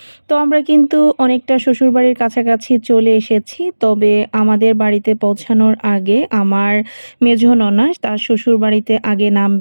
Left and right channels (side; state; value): both; inverted; correlation -1.00